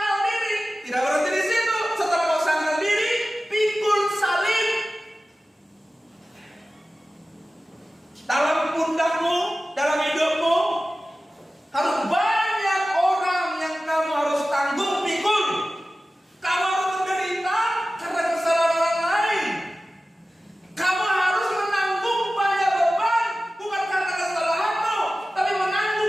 diri. Tidak berhenti di situ. Setelah kau sangkal diri, pikul salib. Dalam pundakmu, dalam hidupmu, harus banyak orang yang kamu harus tanggung, pikul. Kamu harus menderita karena kesalahan orang lain. Kamu harus menanggung banyak beban, bukan karena kesalahanmu, tapi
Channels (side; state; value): both; normal; correlation 0.96